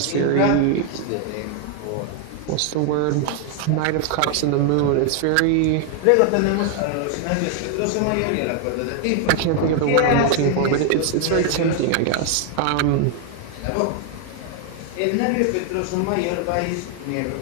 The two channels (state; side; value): different; both; correlation 0.00